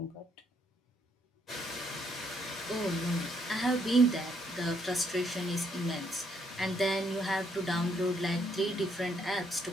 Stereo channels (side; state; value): both; normal; correlation 0.72